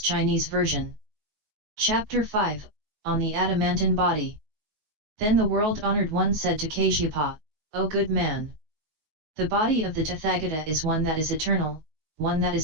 Chinese version. Chapter 5, On the Adamantine Body. Then the world-honored one said to Kasyapa, O good man! The body of the Tathagata is one that is eternal, one that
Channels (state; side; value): late; left; 19 ms